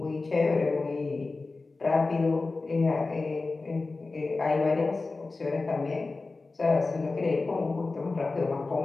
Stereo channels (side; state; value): right; quieter; 3.6 dB